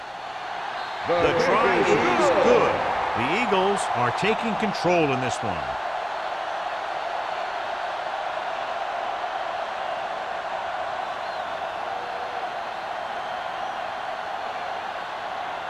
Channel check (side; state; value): both; identical; correlation 1.00